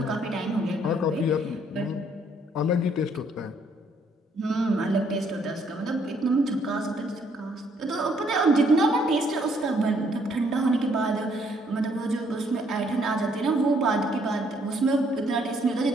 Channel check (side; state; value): both; normal; correlation 0.67